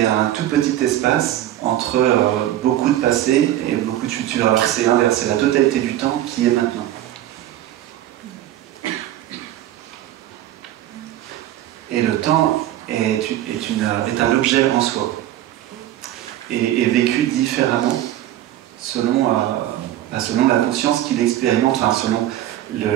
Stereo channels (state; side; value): quieter; left; 13.2 dB